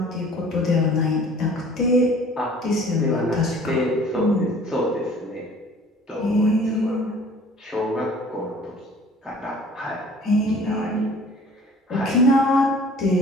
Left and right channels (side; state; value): both; normal; correlation 0.50